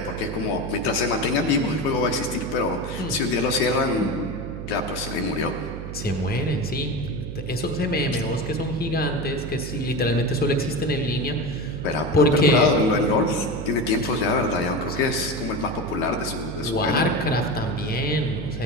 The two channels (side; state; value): right; noise; hum, 8 dB below the sound